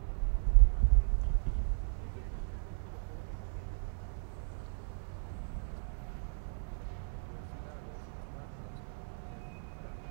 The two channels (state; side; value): silent; left; 54 dB below the other